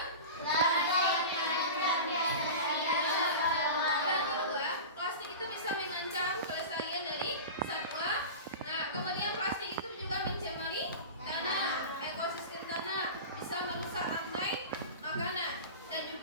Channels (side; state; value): both; inverted; correlation -0.30